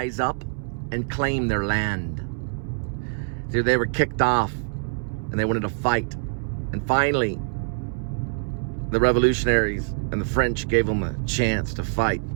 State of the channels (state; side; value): silent; left; 62 dB below the other